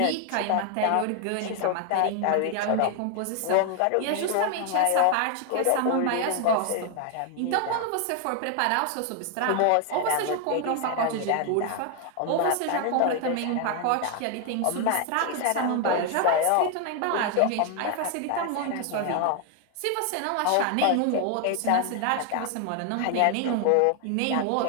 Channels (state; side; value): different; both; correlation 0.00